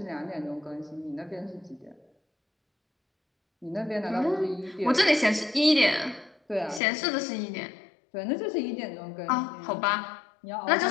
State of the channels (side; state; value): right; drops out; at 6.8 s